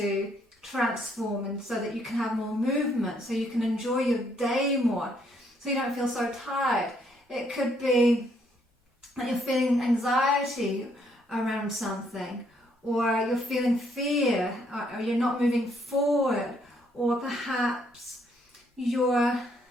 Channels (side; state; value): both; normal; correlation 0.70